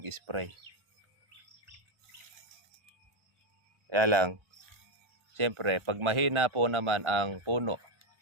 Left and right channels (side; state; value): left; late; 1.4 ms